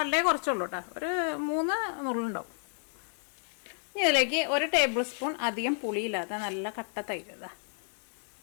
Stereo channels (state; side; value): silent; right; 57 dB below the other